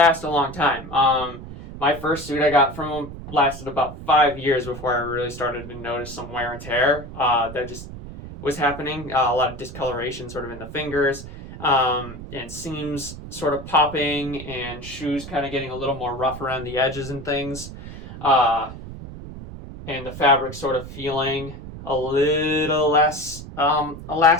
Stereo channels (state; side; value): noise; right; rumble, 12 dB below the sound